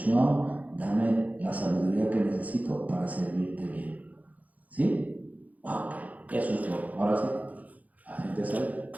dame la sabiduría que necesito para servirte bien. ¿Sí? Ok. Eso es todo. Ahora sí, la gente sabe.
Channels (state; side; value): late; left; 0.076 ms